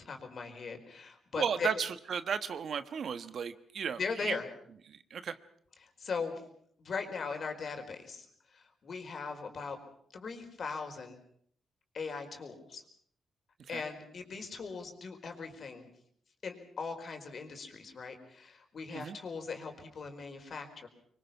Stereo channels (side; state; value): both; normal; correlation 0.76